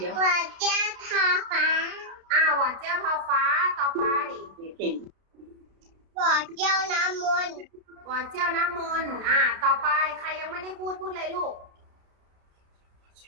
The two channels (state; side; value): late; left; 32 ms